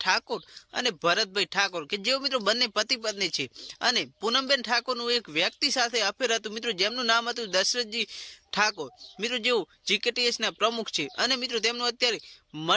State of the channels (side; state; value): both; identical; correlation 1.00